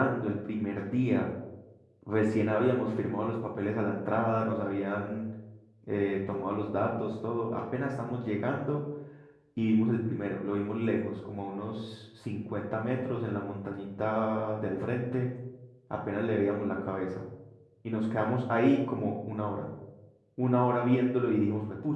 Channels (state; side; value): identical; both; correlation 1.00